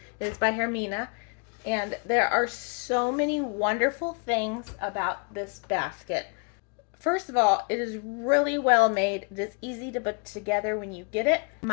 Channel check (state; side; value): quieter; right; 37.4 dB